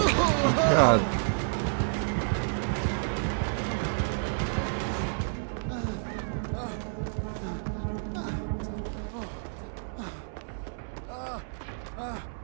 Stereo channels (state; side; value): silent; left; 58 dB below the other